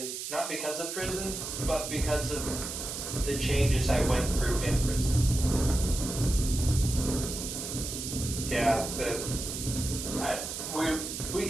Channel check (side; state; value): right; noise; hiss, 6 dB below the sound